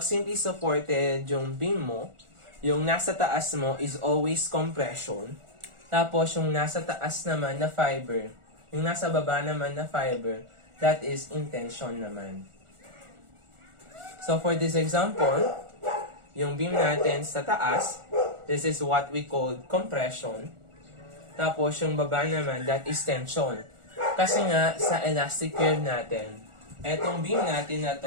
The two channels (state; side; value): late; left; 1.4 ms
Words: simply supported yung beam mo, yung nasa taas mo is always compression. Tapos yung nasa taas naman na fiber, yung nasa baba naman na fiber, that is intention naman. So for this example, yung beam natin sa taas, this is what we call compression. Tapos yung baba naman, that is tension. Kasi nga, sa elastic curve natin, etong beam natin na